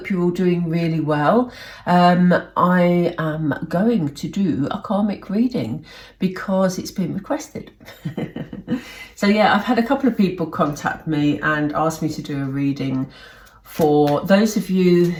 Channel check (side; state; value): both; identical; correlation 1.00